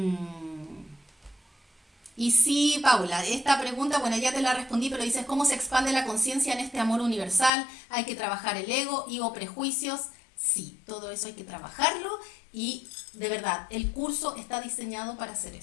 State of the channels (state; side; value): drops out; right; at 7.5 s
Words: Y sí, Paula, esta pregunta, bueno, ya te la respondí, pero dices, ¿cómo se expande la conciencia en este amor universal? Hay que trabajar el ego y o prejuicios. Sí, todo eso hay que trabajarlo y de verdad, el curso está diseñado para hacer